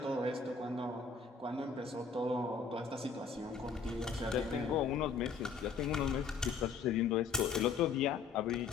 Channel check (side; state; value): right; quieter; 5.4 dB